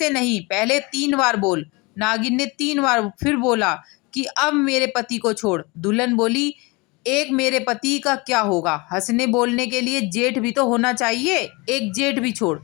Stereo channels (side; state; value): right; quieter; 26.2 dB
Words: नहीं, पहले 3 बार बोल। नागिन ने 3 बार फिर बोला कि अब मेरे पति को छोड़। दुल्हन बोली, एक मेरे पति का क्या होगा, हंसने बोलने के लिए जेठ भी तो होना चाहिए, एक जेठ भी छोड़।